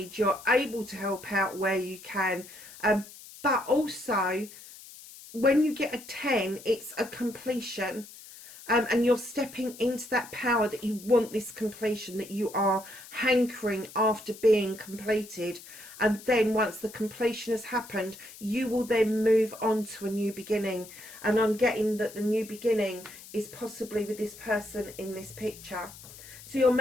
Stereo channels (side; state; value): left; noise; hiss, 17 dB below the sound